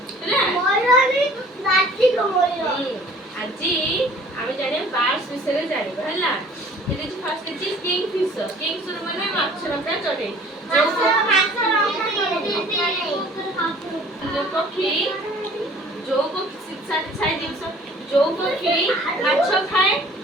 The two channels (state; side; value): normal; both; correlation 0.51